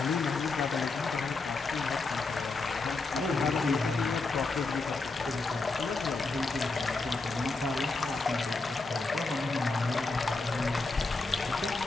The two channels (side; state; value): right; quieter; 3.7 dB